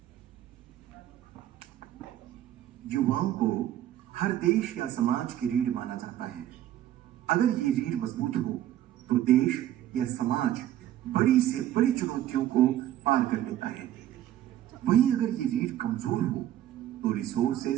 युवाओं को हर देश या समाज की रीढ़ माना जाता है। अगर ये रीढ़ मजबूत हो तो देश या समाज बड़ी से बड़ी चुनौतियों को पार कर लेता है। वहीं अगर ये रीढ़ कमजोर हो तो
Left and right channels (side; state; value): left; quieter; 12.5 dB